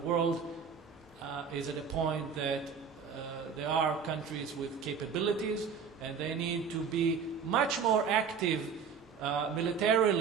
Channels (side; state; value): left; quieter; 6.3 dB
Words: world is at a point that there are countries with capabilities, and they need to be much more active